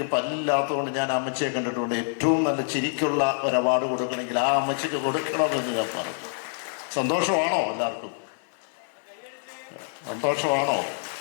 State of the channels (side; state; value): right; silent; 61 dB below the other